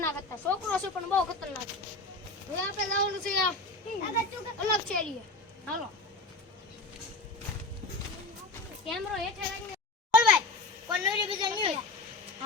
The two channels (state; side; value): quieter; right; 3.1 dB